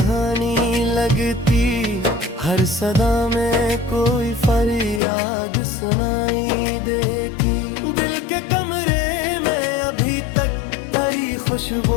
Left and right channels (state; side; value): drops out; right; at 5.0 s